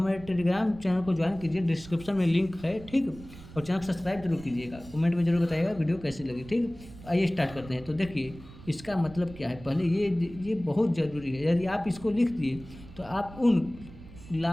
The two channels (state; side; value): noise; right; rumble, 17 dB below the sound